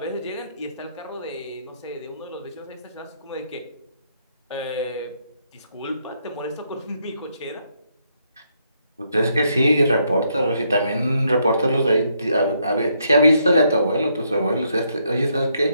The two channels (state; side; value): inverted; both; correlation -0.75